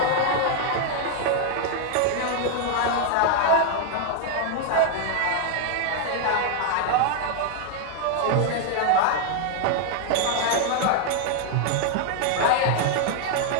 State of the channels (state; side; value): different; both; correlation 0.00